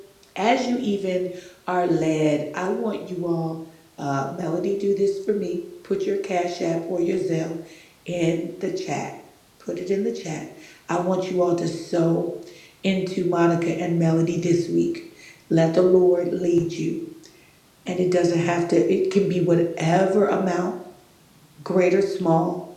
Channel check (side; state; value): both; identical; correlation 1.00